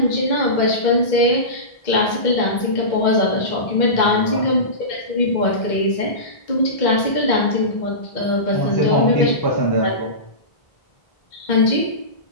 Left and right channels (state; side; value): late; right; 2.0 ms